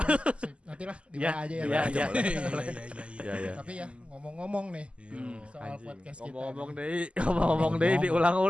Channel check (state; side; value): late; left; 0.055 ms